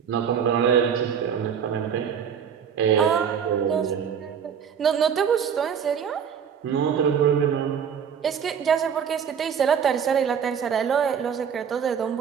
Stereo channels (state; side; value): quieter; left; 7.6 dB